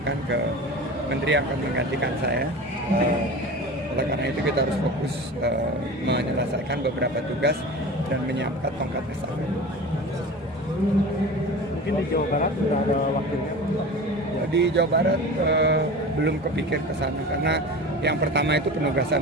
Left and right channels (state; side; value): normal; both; correlation 0.34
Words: ke menteri yang akan menggantikan saya. Oleh karena itu kita harus fokus menyelesaikan beberapa tugas dan menyiapkan tongkat estafet. Mungkin di Jawa Barat sudah ada wakilnya? Di Jawa Barat belum kepikir ke sana, karena yang pertama itu